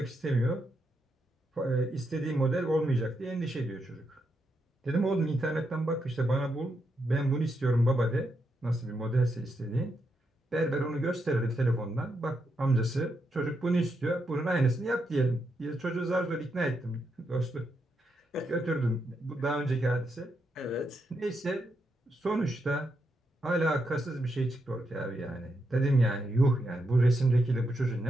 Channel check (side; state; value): both; normal; correlation 0.82